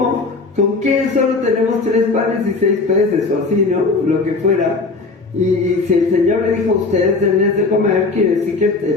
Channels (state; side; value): quieter; right; 3.9 dB